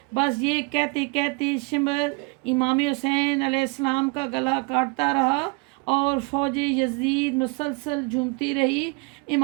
بس یہ کہتے کہتے شمر امام حسین علیہ السلام کا گلا کاٹتا رہا اور فوج یزید مسلسل جھومتی رہی۔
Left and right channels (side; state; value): left; quieter; 29.9 dB